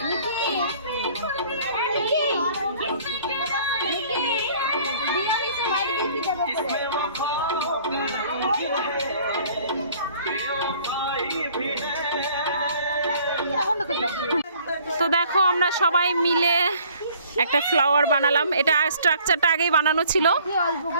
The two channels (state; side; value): inverted; both; correlation -0.56